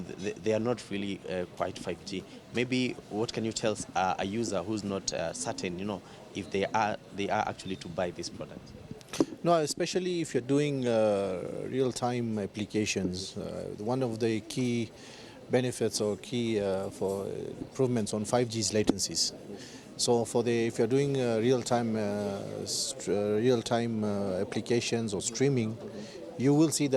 they are not really quite 5G. Maybe what can you tell a user who's not certain, if they are actually to buy this product? No, especially if you're doing real-time applications. One of the key benefits or key for improvements on 5G is latencies. So if you're doing real-time applications or streaming, you will see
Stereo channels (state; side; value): identical; both; correlation 1.00